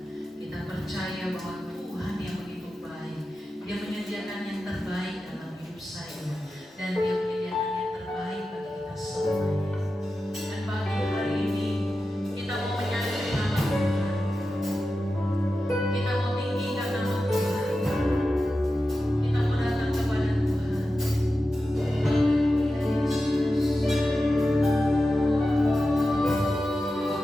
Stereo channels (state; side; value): normal; both; correlation 0.92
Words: Kita percaya bahwa Tuhan yang begitu baik, Dia menyediakan yang terbaik dalam hidup saya, dan Dia menyediakan yang terbaik bagi kita semuanya. Dan pagi hari ini kita mau menyadari nama Tuhan. Kita mau tinggikan nama Tuhan. Kita mau datang kepada Tuhan. Haleluya Yesus.